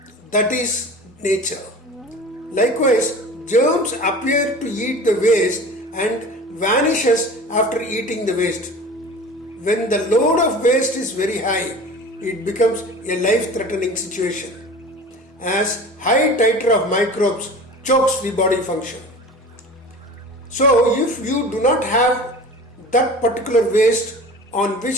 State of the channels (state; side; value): normal; both; correlation 0.38